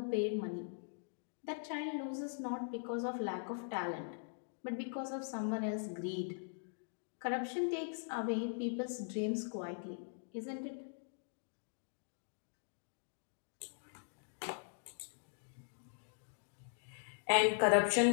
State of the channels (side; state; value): right; silent; digital silence